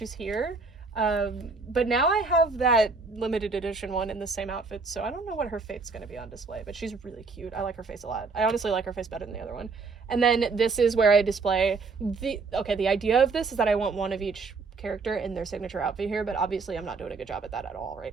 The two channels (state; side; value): quieter; left; 4.3 dB